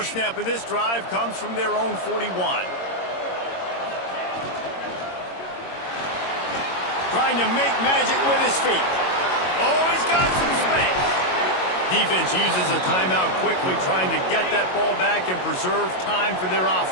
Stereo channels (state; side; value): late; right; 22 ms